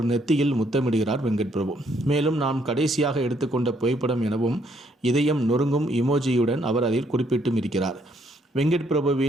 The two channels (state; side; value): normal; both; correlation 0.70